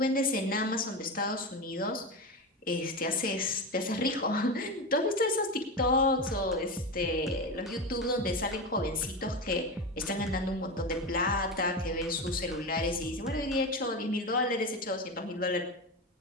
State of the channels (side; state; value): both; normal; correlation 0.20